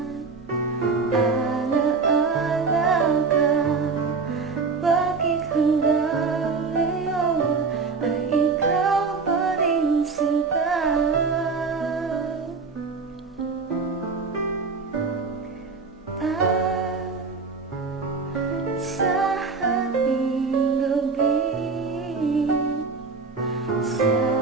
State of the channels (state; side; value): quieter; left; 4.7 dB